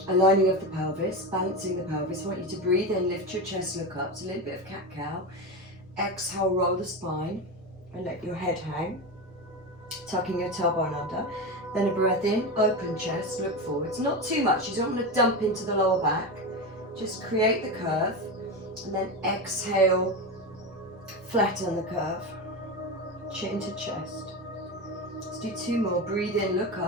aligning of the pelvis, balancing the pelvis. I want you to breathe in, lift your chest, look up. So a little bit of cat-cow. Exhale, roll the spine and let your head hang, tucking your tailbone under. Then a breath in, open chest, look forwards. Not too much, you don't want to dump into the lower back. Just create the curve, and then exhale, flatten the curve, chin to chest. Let's do 2 more. Breathe in, look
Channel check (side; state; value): both; normal; correlation 0.19